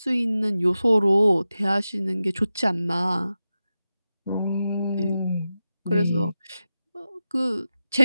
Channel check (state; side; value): inverted; both; correlation -0.93